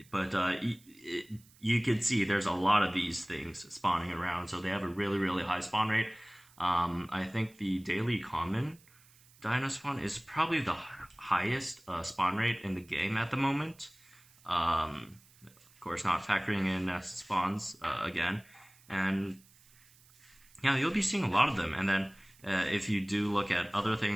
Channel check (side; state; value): right; noise; hiss, 27 dB below the sound